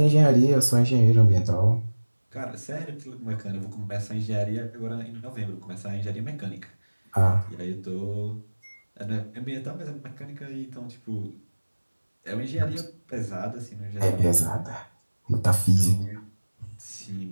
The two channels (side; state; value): both; inverted; correlation -1.00